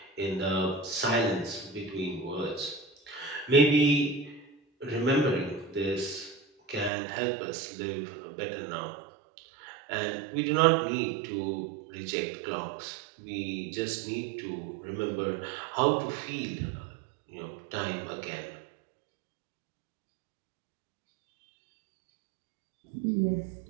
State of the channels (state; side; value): drops out; left; at 6.9 s